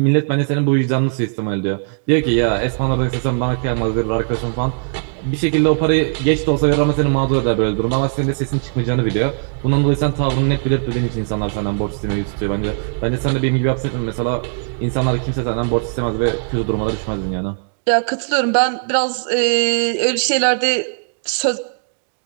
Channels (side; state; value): left; silent; digital silence